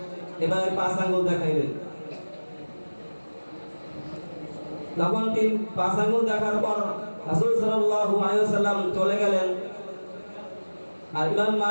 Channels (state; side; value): inverted; both; correlation -1.00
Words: এভাবে 5 আঙ্গুল দেখাইলেন। তখন তিনি 5 আঙ্গুল দেখার পর রাসূল সাল্লাল্লাহু আলাইহি ওয়াসাল্লাম চলে গেলেন। আর ইমাম